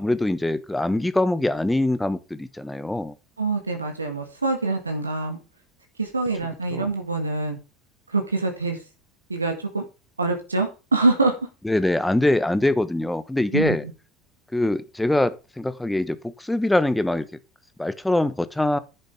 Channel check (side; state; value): both; normal; correlation 0.40